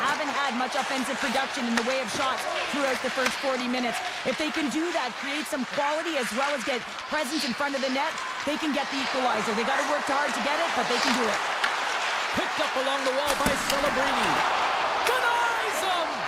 had much offensive production in the way of shots throughout the first 40 minutes. If they can do that, create some quality as well as get presence in front of the net, they can get the equalizer. They got to work hard to get it, but they can do it. Picked up along the wall by Celebrini. Denies him!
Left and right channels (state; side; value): identical; both; correlation 1.00